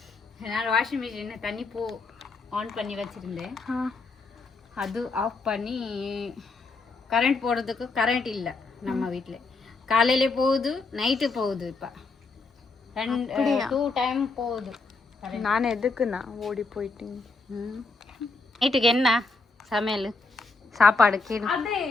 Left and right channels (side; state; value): right; quieter; 3.8 dB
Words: நான் வாஷிங் மிஷின் தண்ணி ஆன் பண்ணி வச்சிருந்தேன். அது ஆஃப் பண்ணி கரண்ட் போடுறதுக்கு கரண்ட் இல்லை நம்ம வீட்டில். காலையில போகுது, நைட்டு போகுது. இப்போ 2 டைம் போகுது. நான் எதுக்குண்ணா ஓடி போயிட்டீங்க? நைட்டுக்கு என்ன சமையல் சாப்பாடு?